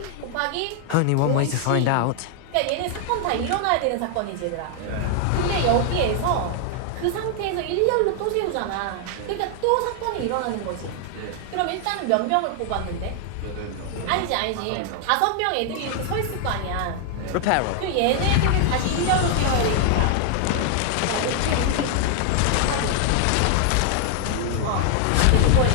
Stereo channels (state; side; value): different; both; correlation 0.00